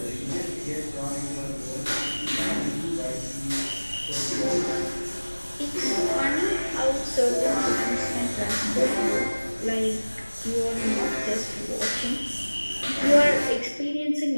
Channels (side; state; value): both; inverted; correlation -1.00